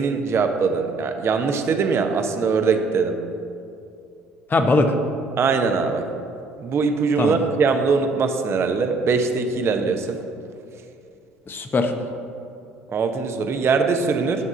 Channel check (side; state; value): left; quieter; 3.2 dB